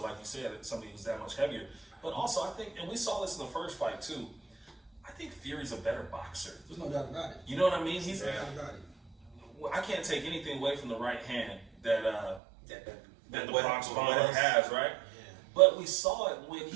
like you said, somebody who's that much heavier. But also, I think, and we saw this in the first fight too. I think Fury's a better boxer. There's no doubt about it. You know what I mean? He's. No doubt about it. I can't take anything away from the right hand that the what- Bronx what Bomber else? has, right? Yeah. But we saw it when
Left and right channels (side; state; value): left; drops out; at 12.4 s